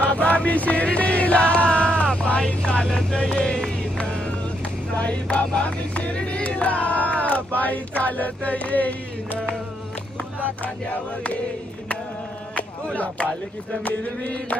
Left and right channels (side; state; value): both; normal; correlation 0.76